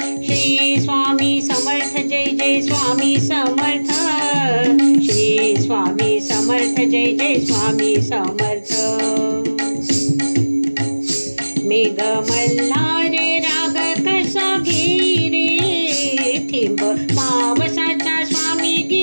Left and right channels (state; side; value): inverted; both; correlation -1.00